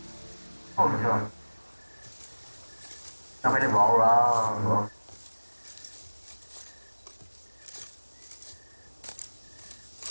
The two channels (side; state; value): both; inverted; correlation -1.00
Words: Ôi trời. Sao phải đi bộ rồi.